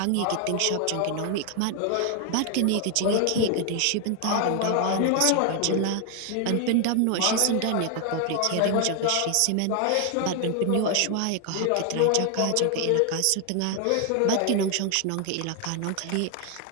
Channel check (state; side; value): different; both; correlation 0.00